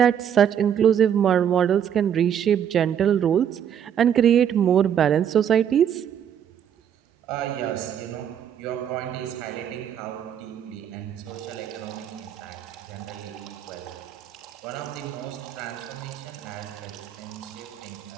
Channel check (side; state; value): left; quieter; 9.0 dB